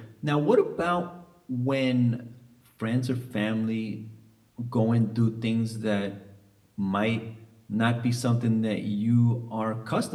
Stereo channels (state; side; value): identical; both; correlation 1.00